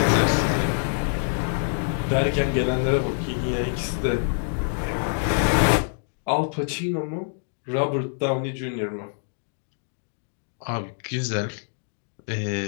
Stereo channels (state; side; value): silent; right; digital silence